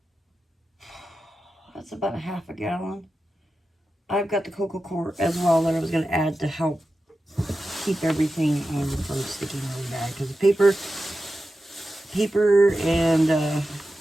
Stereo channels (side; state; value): both; normal; correlation 0.92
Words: that's about a half a gallon. I've got the cocoa core as well that I was going to add to help keep everything from sticking really bad. Because the paper and